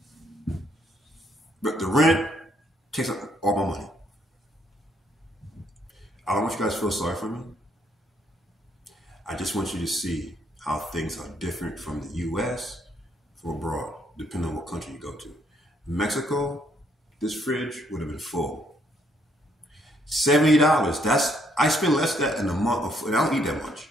But the rent takes up all my money. I don't want you guys to feel sorry for me. I just want you to see how things are different from the US from abroad, depending on what country you go to. Mexico, this fridge would have been full. $70. I spend less than that in a month, and I don't eat that much.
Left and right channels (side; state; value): both; normal; correlation 0.70